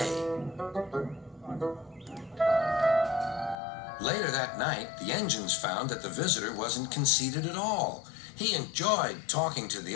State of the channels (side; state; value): right; drops out; at 3.6 s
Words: Later that night, the engines found that the visitor wasn't conceited at all. He enjoyed talking to